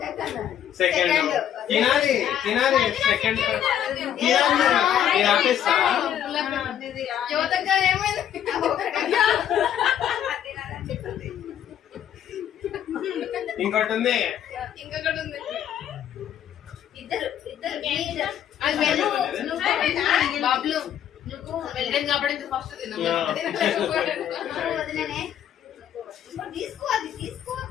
సెకండ్ తినాలి. సెకండ్ ఆపేస్తా. ఇంకోటి ఉంది. బాబులు నువ్వు వెళ్ళాను కాబట్టి ఫస్ట్ తీసుకో, అది తీసుకో.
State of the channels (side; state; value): right; quieter; 10.2 dB